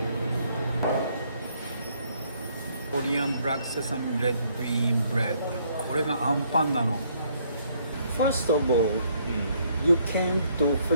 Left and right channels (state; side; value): inverted; both; correlation -0.68